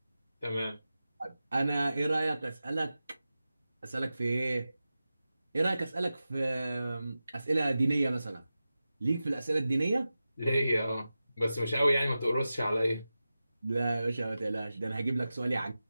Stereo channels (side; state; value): both; inverted; correlation -0.93